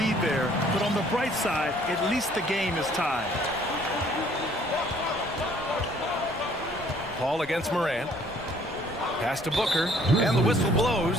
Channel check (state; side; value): noise; left; rumble, 21 dB below the sound